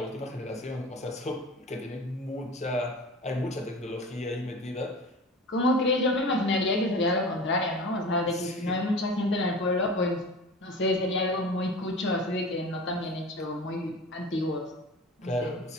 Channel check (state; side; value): normal; both; correlation 0.35